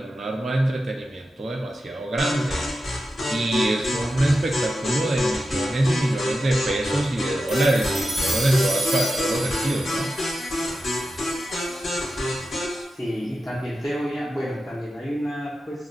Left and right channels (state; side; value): normal; both; correlation 0.91